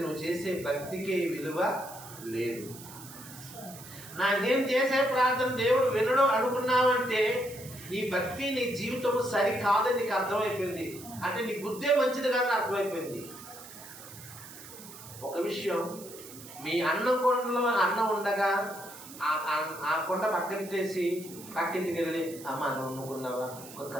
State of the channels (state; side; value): noise; right; hiss, 16 dB below the sound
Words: నువ్వు చేసే భక్తికే విలువ లేదు. నేను చేసే ప్రార్థన దేవుడు వినడు అనుకున్నావంటే నీ భక్తి నీ జీవితం సరికాదని నీకు అర్థమైపోయింది. అంటే నీ బుద్ధే మంచిది కాదని అర్థమైపోయింది. ఒక విషయం, మీ అన్నం కొండలో అన్నం ఉండగా ఆ కొండ పక్కనిట్టేసి పక్కింటికి వెళ్ళి అమ్మ నువ్వు వండుకున్నావా, ఒక